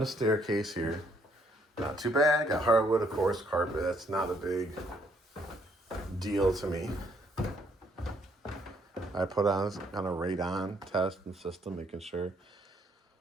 staircase here. Not too bad. Got hardwood, of course, carpet. That's not a big deal to me. I put on kind of radon test and system, making sure.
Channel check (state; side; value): normal; both; correlation 0.69